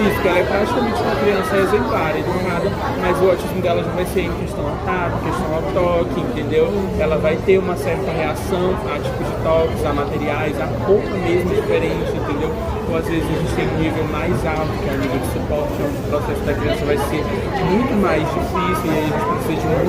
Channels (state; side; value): identical; both; correlation 1.00